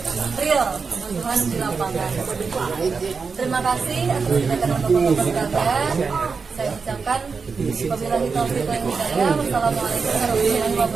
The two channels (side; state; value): left; quieter; 5.1 dB